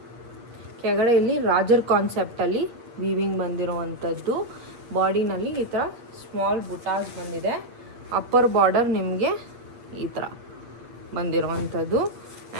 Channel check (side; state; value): left; late; 8.6 ms